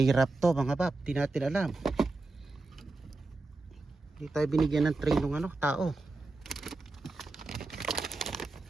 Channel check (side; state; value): left; quieter; 3.3 dB